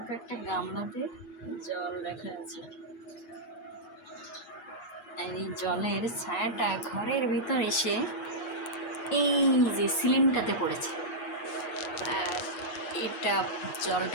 একটা গামলাতে জল রাখা আছে, আর এই জলের ছায়াটা ঘরের ভিতর এসে এই যে সিলিংটাতে পড়েছে। আর এটা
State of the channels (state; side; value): late; right; 8.4 ms